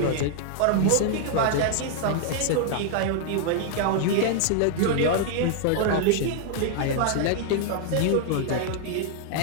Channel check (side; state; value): both; different; correlation 0.00